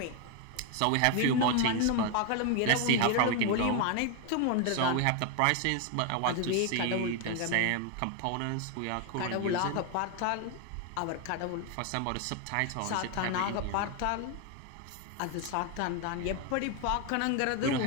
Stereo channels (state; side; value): different; both; correlation 0.01